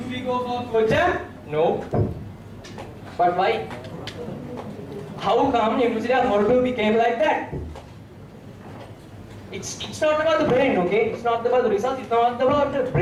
we go for Exam? No. But why? How come University of Morocco became like that? It's not about the brain, okay? It's not about the results, it's not about the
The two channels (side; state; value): both; identical; correlation 1.00